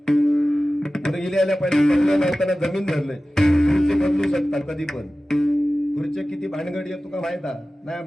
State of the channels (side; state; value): both; normal; correlation 0.96